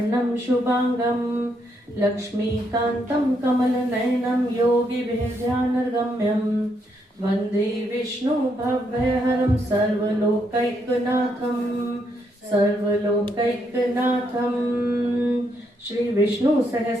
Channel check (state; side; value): normal; both; correlation 0.77